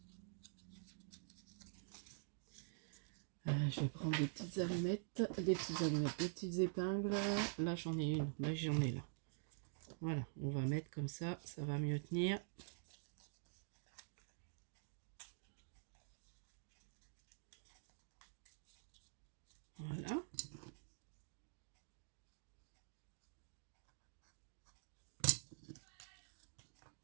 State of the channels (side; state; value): left; silent; digital silence